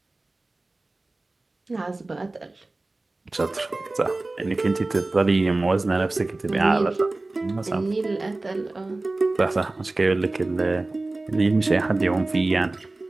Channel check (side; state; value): left; quieter; 3.1 dB